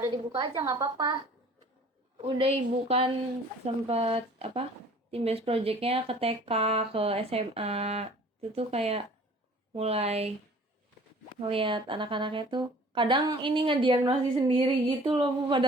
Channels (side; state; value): both; normal; correlation 0.50